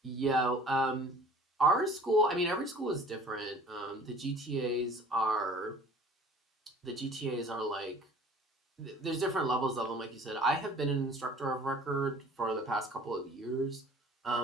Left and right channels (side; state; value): both; normal; correlation 0.48